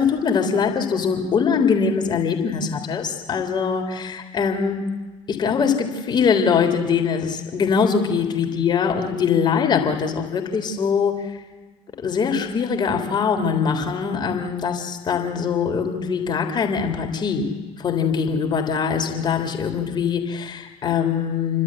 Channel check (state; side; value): quieter; right; 5.9 dB